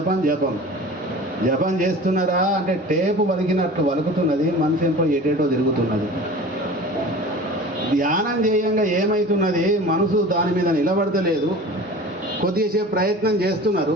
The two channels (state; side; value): normal; both; correlation 0.39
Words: జపం. జపం చేస్తున్నారా అంటే టేపు వలికినట్లు వలుకుతున్నది, మనసు ఎంతో ఎటేటో తిరుగుతున్నది. ధ్యానం చేయంగా ఏమవుతున్నది, మనసు దాని మీద నిలబడతలేదు. కొద్దిసేపు ప్రయత్నం చేస్తున్నారు.